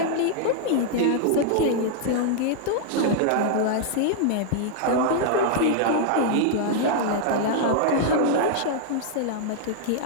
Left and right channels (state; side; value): different; both; correlation -0.01